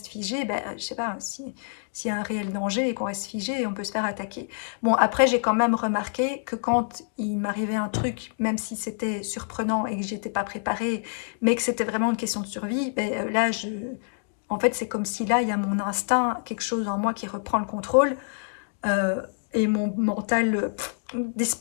figé, ben, je sais pas, s'il y a un réel danger et qu'on reste figé et on peut se faire attaquer. Bon, après, j'ai quand même remarqué que quand il m'arrivait un truc, même si c'était surprenant et que j'étais pas préparée, mais que c'était vraiment une question de survie, ben, là, en fait, c'est comme si là, il y a mon instinct, quelque chose en moi qui reprend le contrôle, euh, et mon mental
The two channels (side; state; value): right; silent; digital silence